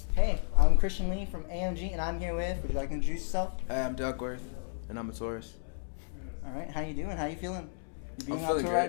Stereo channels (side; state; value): right; silent; 56 dB below the other